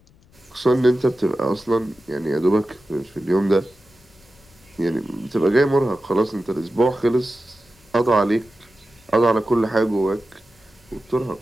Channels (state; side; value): noise; left; rumble, 30 dB below the sound